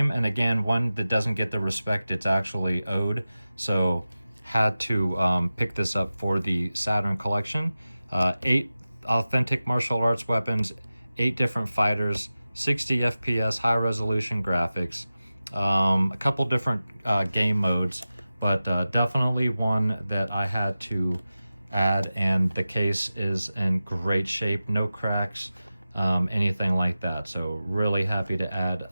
and again, one that doesn't get the respect it's actually owed. So had to pick this up for the Saturn collection. 8 authentic martial arts weapons, 8 different fighters, 60 FPS, high resolution graphics, a couple different game modes, but definitely one that I had to add, and the case is in great shape, no cracks, anything like that. So really happy to add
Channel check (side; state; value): both; inverted; correlation -0.95